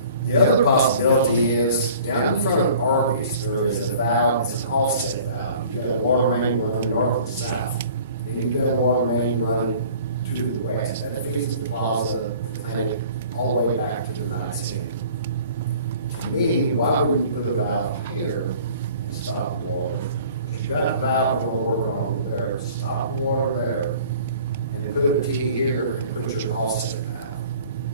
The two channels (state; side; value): inverted; both; correlation -0.49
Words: The other possibility is, down in front of Arby's, there is a valve, it's an offset valve. You've got a water main running north and south. And you've got a water main running to the west. And that feeds the plaza, the clinic, all the way back to the Knights Inn. To me, why wouldn't you put a valve here and stop the water? If you got a valve over on there, stop the water there, and then put a T here and put your offset valve.